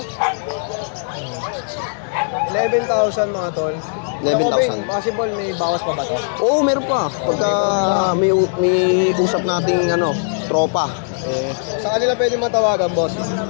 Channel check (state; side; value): silent; right; digital silence